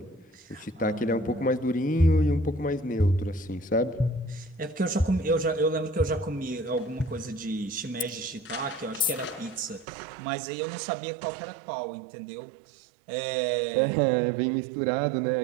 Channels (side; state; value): left; drops out; at 9.9 s